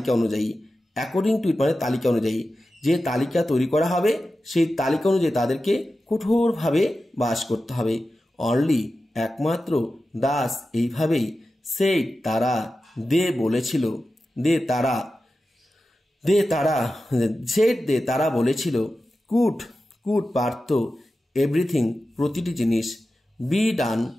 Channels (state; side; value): normal; both; correlation 0.93